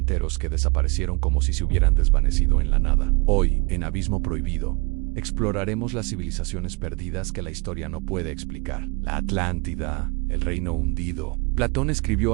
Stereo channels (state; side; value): quieter; left; 29.7 dB